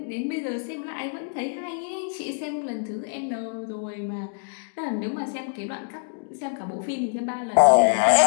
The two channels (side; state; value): right; silent; digital silence